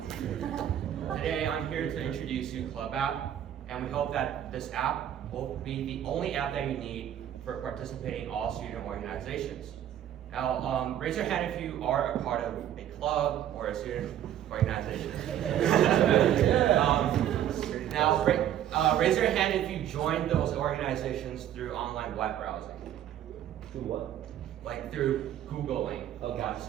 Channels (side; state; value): left; quieter; 10.9 dB